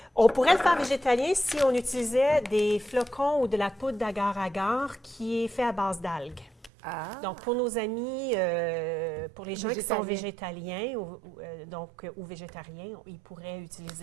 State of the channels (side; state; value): left; drops out; at 6.7 s